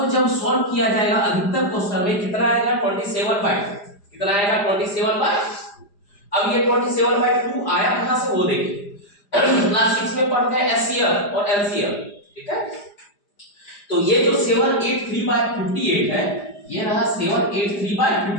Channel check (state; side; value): late; right; 5.0 ms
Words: जब सॉल्व किया जाएगा अधिकतर क्वेश्चन में कितना आएगा, 27/2। कितना आएगा, 27/2। अब ये 27/2 आया कहां से, वो देखिए क्लास 6 में पढ़ते हैं एचसीएफ और एलसीएफ। ठीक है, तो ये जो 783/58 है, ये रहा